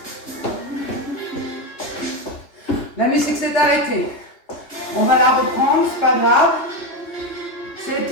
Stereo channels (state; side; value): late; right; 3.3 ms